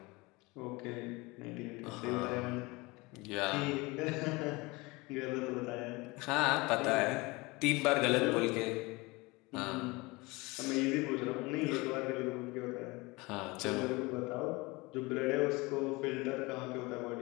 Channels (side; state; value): right; quieter; 24.0 dB